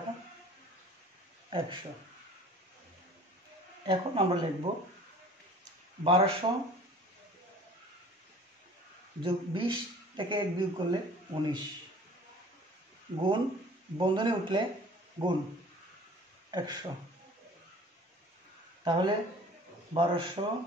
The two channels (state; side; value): normal; both; correlation 0.47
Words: 100। এখন আমরা লিখব 1200 যোগ 20 থেকে 1 বিয়োগ করলে 19 গুণ বন্ধনী উঠলে গুণ 100। তাহলে 1200